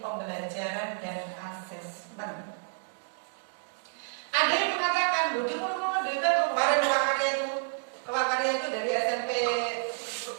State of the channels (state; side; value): silent; left; digital silence